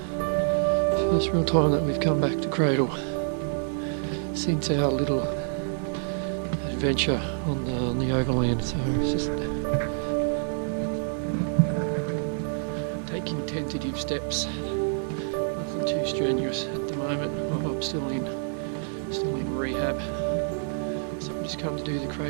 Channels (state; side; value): silent; left; digital silence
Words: first real time that we've come back to Cradle since our little adventure on the overland, so it's just taking tentative steps, nothing too strenuous at the moment. I'm still in rehab, so I've just come to do the